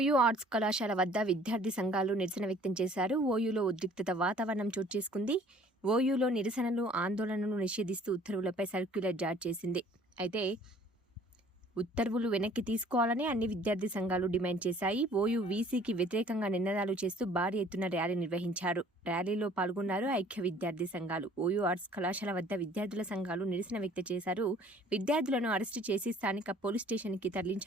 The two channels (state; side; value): normal; both; correlation 0.54